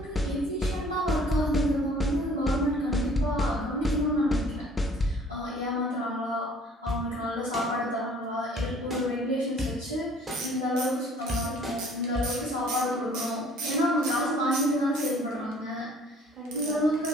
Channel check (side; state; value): both; normal; correlation 0.55